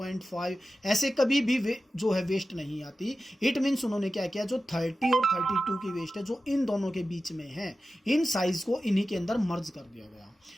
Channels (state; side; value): normal; both; correlation 0.94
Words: ऐसे कभी भी जो है वेस्ट नहीं आती। इट मीन्स उन्होंने क्या किया, जो 30 और 32 की वेस्ट है जो इन दोनों के बीच में है, इन साइज को इन्हीं के अंदर मर्ज कर दिया गया।